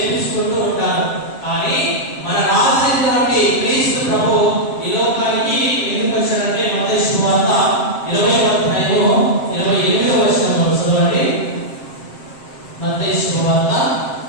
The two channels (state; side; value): late; right; 7.6 ms